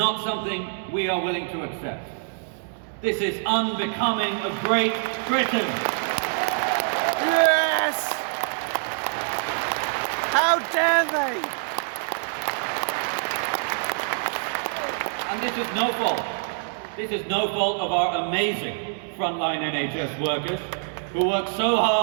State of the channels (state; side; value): silent; left; digital silence